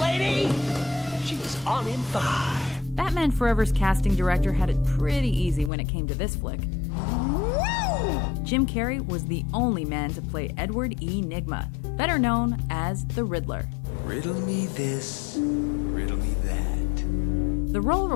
she's on in 5. Batman Forever's casting director had it pretty easy when it came to this flick. Jim Carrey was the only man to play Edward E. Nygma, better known as the Riddler. Riddle me this, riddle me that. The role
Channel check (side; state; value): right; drops out; at 5.7 s